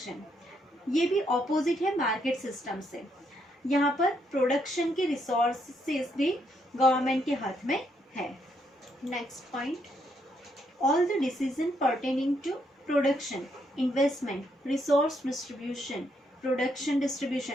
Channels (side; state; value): both; normal; correlation 0.75